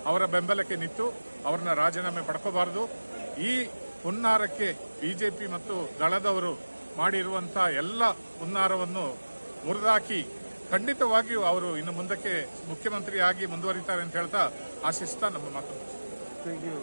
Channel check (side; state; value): both; inverted; correlation -1.00